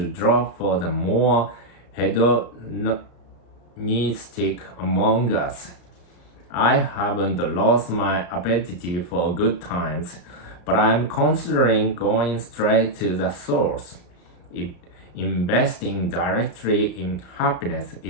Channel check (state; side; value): late; right; 34 ms